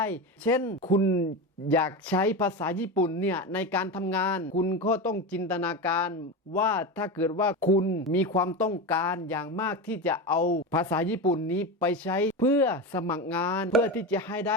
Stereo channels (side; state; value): both; normal; correlation 0.20